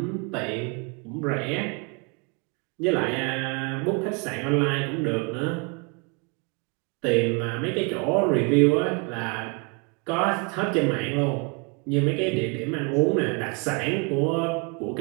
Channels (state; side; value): quieter; left; 33.1 dB